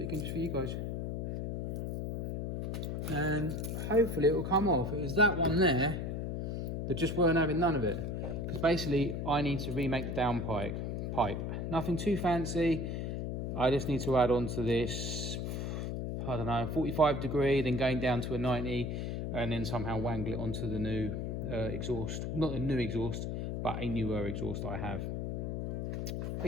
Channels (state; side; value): noise; left; hum, 3 dB below the sound